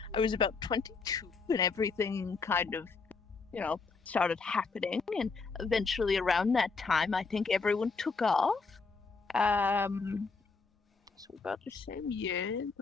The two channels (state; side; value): quieter; right; 4.5 dB